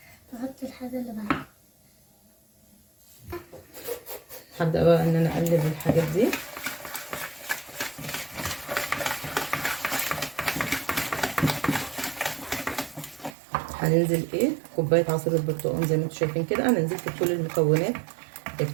تحط الحاجة اللي بعدها. هبدأ بقى ان انا اقلب الحاجات دي. هننزل ايه كوبايه عصير البرتقال زي ما انتم شايفين كده. انا نزلت بكل المكونات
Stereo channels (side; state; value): left; drops out; at 13.4 s